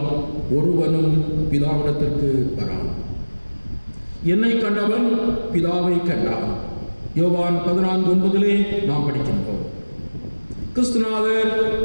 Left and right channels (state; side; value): inverted; both; correlation -1.00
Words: ஒருவனும் பிதாவிடத்திற்கு வரான். என்னை கண்டவன் பிதாவை கண்டான். யோவான் 14:9 நாம் படிக்கின்றோம். கிறிஸ்துநாதர்